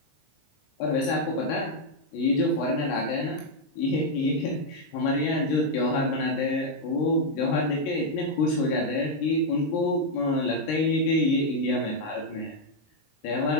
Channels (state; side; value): late; right; 19 ms